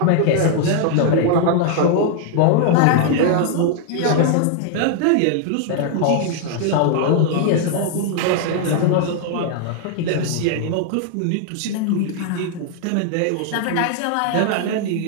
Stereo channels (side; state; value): both; different; correlation 0.00